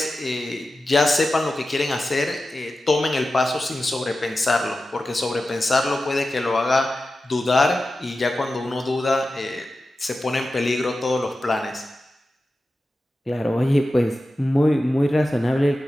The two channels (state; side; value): normal; both; correlation 0.93